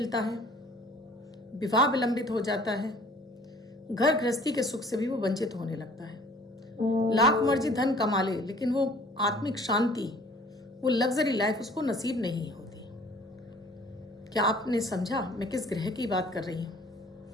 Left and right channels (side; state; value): both; normal; correlation 0.52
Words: है, विवाह विलंबित हो जाता है, घर गृहस्थी के सुख से भी वो वंचित होने लगता है। लाख मर्जी धन कमा ले, लेकिन वो आत्मिक शांति, वो लग्जरी लाइफ उसको नसीब नहीं होती। क्या आपने समझा मैं किस ग्रह की बात कर रही हूँ?